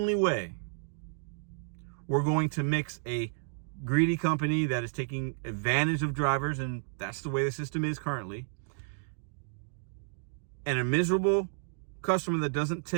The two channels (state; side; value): silent; left; digital silence